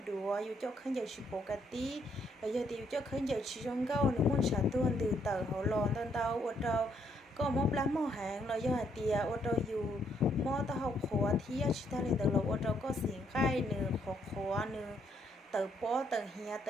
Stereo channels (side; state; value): both; normal; correlation 0.72